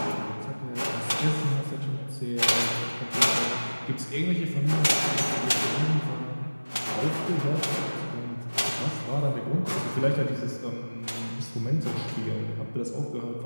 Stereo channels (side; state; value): both; inverted; correlation -1.00